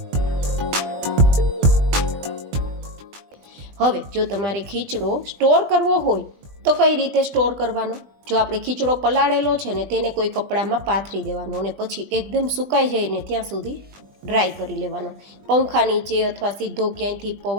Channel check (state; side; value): late; left; 20 ms